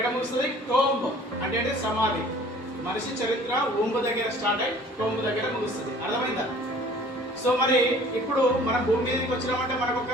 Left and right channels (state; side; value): normal; both; correlation 0.50